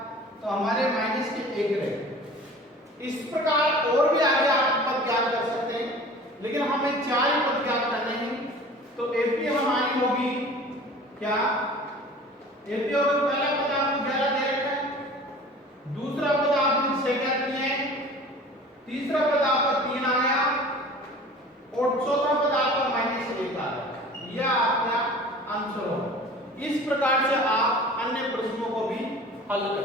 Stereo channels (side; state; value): both; normal; correlation 0.43